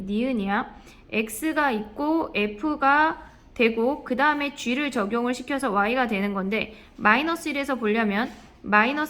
니은이야. x가 있고 f가 되고 그 다음에 g를 적용을 시켜서 y가 되는 건데 마이너스 1에서 보려면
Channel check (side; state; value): both; identical; correlation 1.00